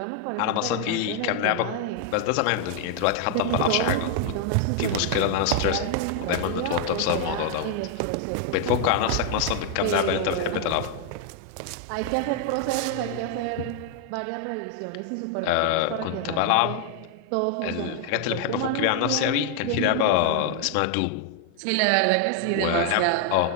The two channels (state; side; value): different; both; correlation 0.00